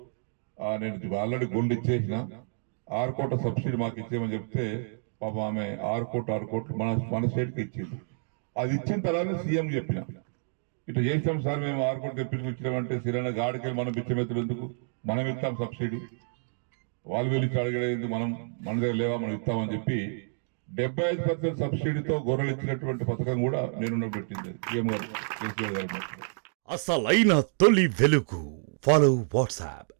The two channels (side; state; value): left; silent; digital silence